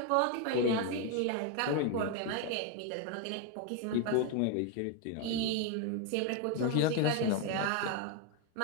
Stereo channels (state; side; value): different; both; correlation 0.01